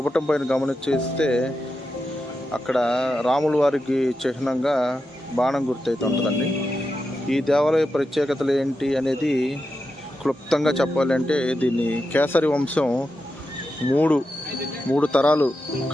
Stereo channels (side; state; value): both; normal; correlation 0.88